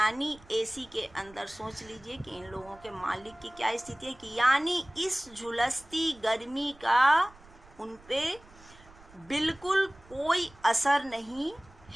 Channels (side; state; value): right; noise; rumble, 24 dB below the sound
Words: एसी के अंदर सोच लीजिए कि इन लोगों के मालिक की क्या स्थिति है, कि यानी इस झुलसती गर्मी का उन पे बिल्कुल कोई असर नहीं